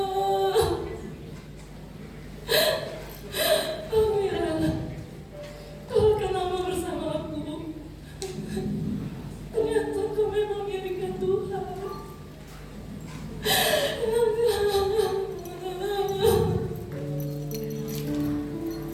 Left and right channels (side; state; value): both; identical; correlation 1.00